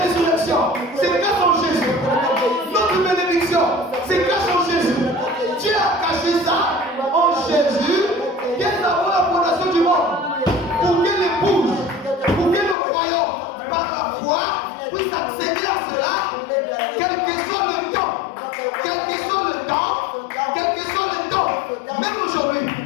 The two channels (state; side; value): drops out; right; at 12.8 s